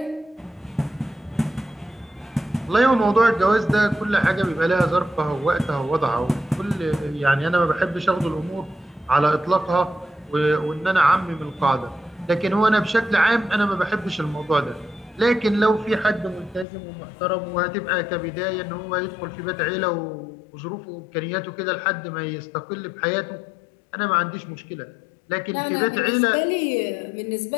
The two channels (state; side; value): drops out; right; at 16.7 s